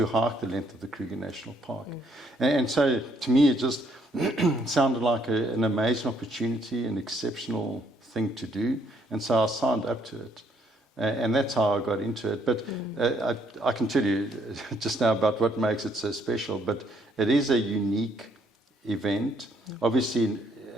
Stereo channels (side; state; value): both; normal; correlation 0.69